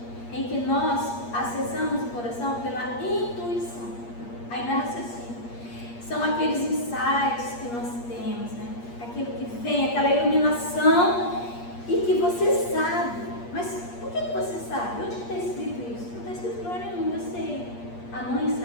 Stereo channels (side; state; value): right; late; 8.5 ms